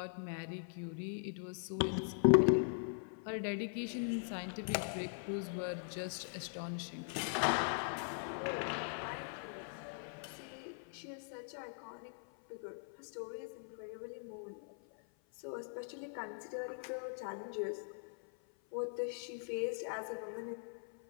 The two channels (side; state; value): right; silent; 50 dB below the other